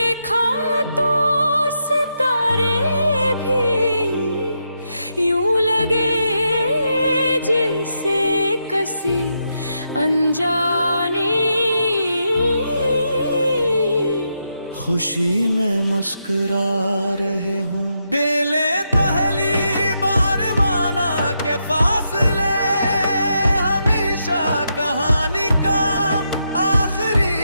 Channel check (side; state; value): both; inverted; correlation -0.82